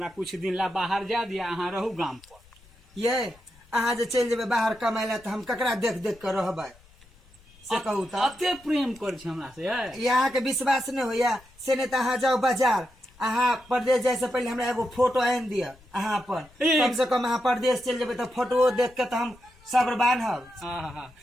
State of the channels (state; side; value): noise; left; rumble, 27 dB below the sound